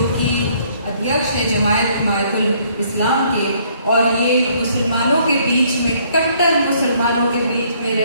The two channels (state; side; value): inverted; both; correlation -0.64